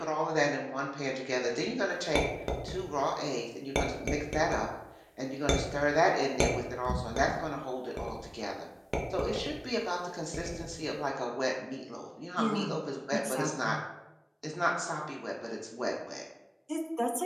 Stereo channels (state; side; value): identical; both; correlation 1.00